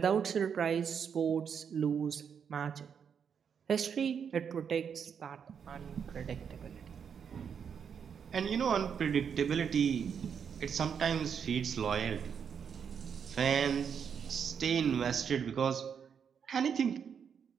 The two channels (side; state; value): left; quieter; 7.2 dB